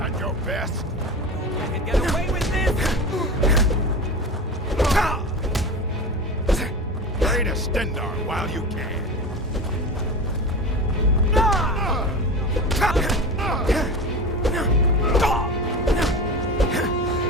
your best? I can get away with this! Pray to Stendar while you can.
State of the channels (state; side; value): normal; both; correlation 0.28